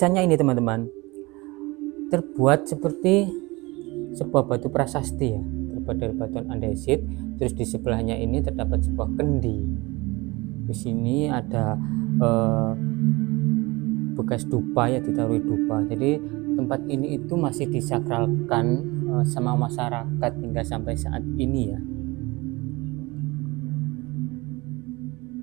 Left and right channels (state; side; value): quieter; left; 23.4 dB